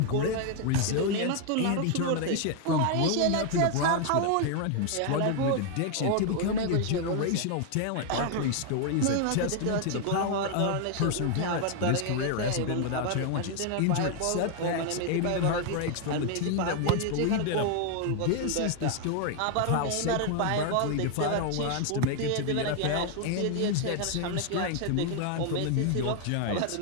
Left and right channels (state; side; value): different; both; correlation 0.00